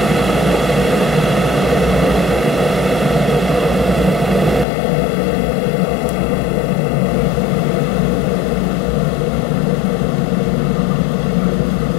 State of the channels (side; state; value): right; drops out; at 4.7 s